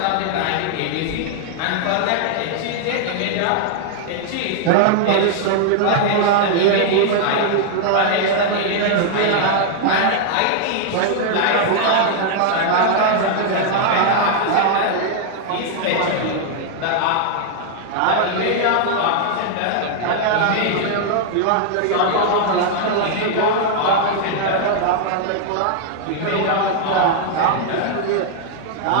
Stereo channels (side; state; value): both; different; correlation 0.00